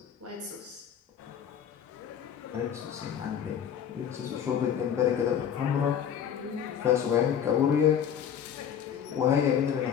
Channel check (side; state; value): right; quieter; 8.7 dB